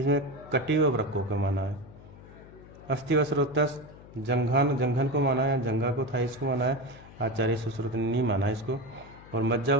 कटी व वृक्कों को माना है। अस्थि व स्रोतस जंघन को माना है, जंघा को थाइस को माना है, आचार्य सुश्रुत ने नहीं माना इसको। और मज्जा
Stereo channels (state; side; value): noise; left; hum, 20 dB below the sound